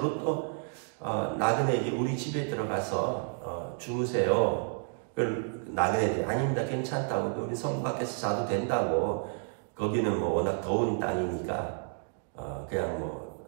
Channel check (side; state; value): left; silent; 57 dB below the other